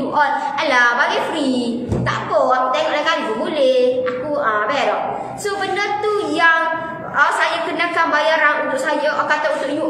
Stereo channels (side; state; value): both; identical; correlation 1.00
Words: all. Alah, bagi free. Tak apa, aku tengok lain kali pun boleh. Aku berok. So benda tu yang saya kenakan bayaran untuk saya, kata untuk you